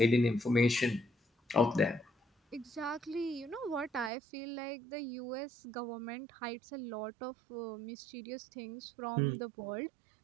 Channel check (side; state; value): left; drops out; at 4.1 s